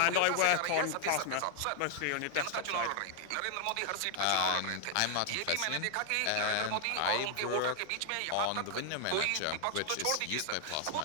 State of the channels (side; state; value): both; different; correlation 0.00